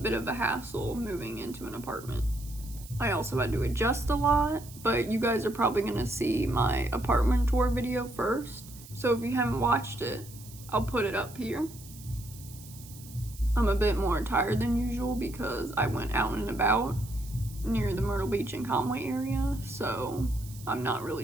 of a hassle moving into an apartment. I also had to adjust a lot, but you guys are probably gonna see my apartment tour video first. So if you haven't watched it, I'll put it up here. I'm a bit more tired than usual because I went out and about near the Myrtle Beach and Conway area, so I'm not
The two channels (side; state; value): right; noise; hiss, 18 dB below the sound